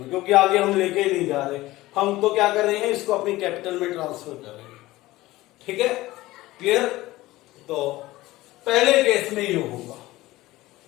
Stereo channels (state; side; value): quieter; right; 18.0 dB